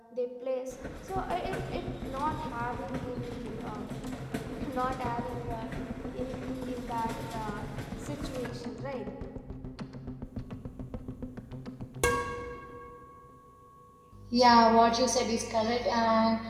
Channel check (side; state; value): both; identical; correlation 1.00